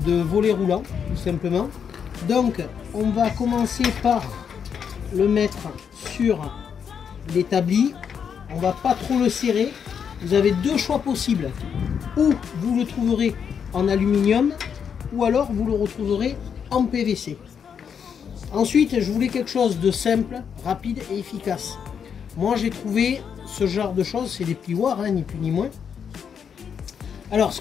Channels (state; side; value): quieter; right; 7.3 dB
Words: de volet roulant, tout simplement. Donc on va commencer par le mettre sur l'établi. On va pas trop le serrer. Vous avez 2 choix possibles. Ou vous le trouverez en aluminium, ou alors vous le retrouverez en PVC. Ensuite je voulais quelque chose de simple, rapide et efficace. Moi j'ai trouvé ce genre de choses, c'est des plioirs, ni plus ni moins. Alors ce